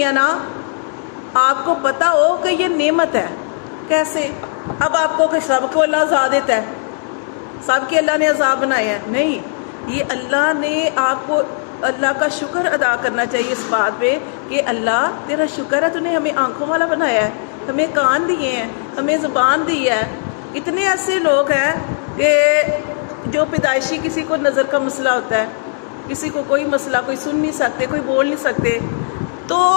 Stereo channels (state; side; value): silent; right; 56 dB below the other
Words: ہیں نا، آپ کو پتہ ہو کہ یہ نعمت ہے۔ کیسے؟ اب آپ کو کہ سب کو اللہ عذاب دیتا ہے، سب کے اللہ نے عذاب بنائے ہیں؟ نہیں، یہ اللہ نے آپ کو، اللہ کا شکر ادا کرنا چاہیے اس بات پہ کہ اللہ تیرا شکر ہے، تو نے ہمیں آنکھوں والا بنایا ہے، ہمیں کان دیے ہیں، ہمیں زبان دی ہے۔ اتنے ایسے لوگ ہیں کہ جو پیدائشی کسی کو نظر کا مسئلہ ہوتا ہے، کسی کو کوئی مسئلہ، کوئی سن نہیں سکتے، کوئی بول نہیں سکتے، تو